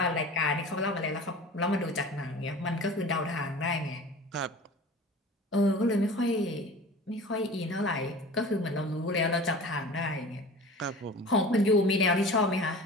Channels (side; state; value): both; normal; correlation 0.39